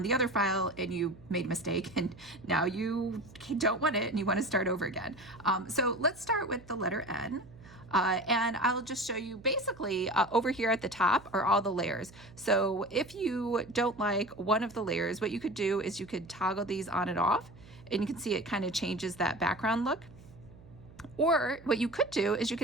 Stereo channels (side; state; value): right; noise; hum, 21 dB below the sound